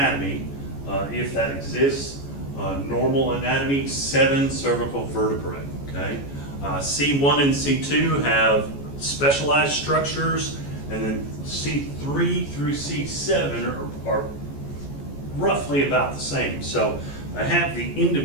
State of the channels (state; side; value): late; right; 14 ms